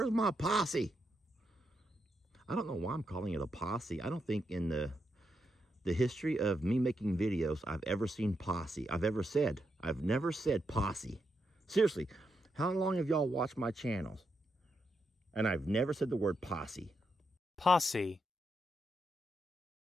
my posse? I don't know why I'm calling it a posse. I don't think in the history of me making videos, I've ever seen posse. I've never said posse. Seriously, how long have y'all watched my channels? And I've never said the word posse. Posse.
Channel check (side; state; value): both; normal; correlation 0.83